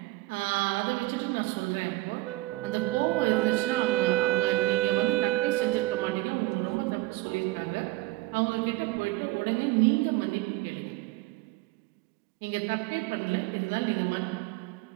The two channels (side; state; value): left; quieter; 19.0 dB